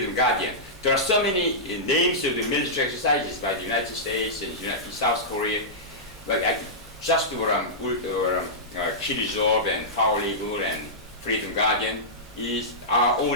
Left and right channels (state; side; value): normal; both; correlation -0.14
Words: Guardian. There are so many names of the military exercises by the United States and South Korea. But just Kirizov and Foal-Eagle and Freedom Guardian are